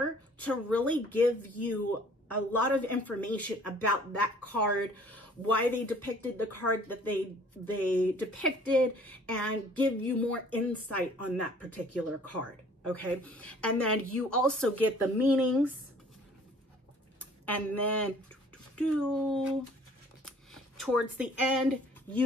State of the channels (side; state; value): both; normal; correlation 0.54